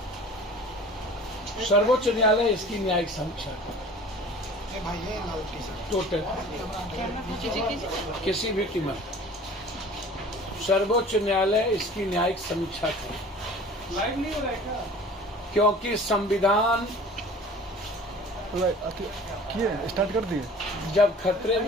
सर्वोच्च न्यायालय इसकी न्यायिक समीक्षा करे टोटल किसी भी कीमत। सर्वोच्च न्यायालय इसकी न्यायिक समीक्षा करे। लाइव नहीं हो रहा है क्या? क्योंकि संविधान स्टार्ट कर दिए। जब खतरे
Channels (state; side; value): normal; both; correlation 0.45